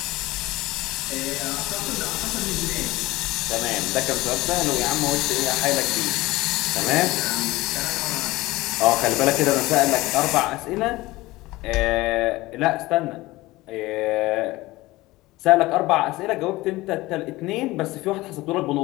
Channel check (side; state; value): right; quieter; 19.4 dB